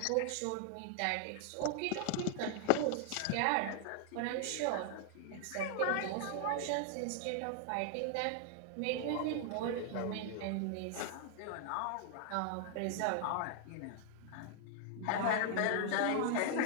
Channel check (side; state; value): both; different; correlation 0.00